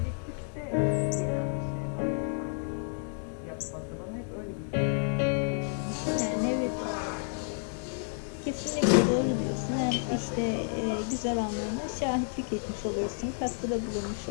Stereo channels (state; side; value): silent; right; 57 dB below the other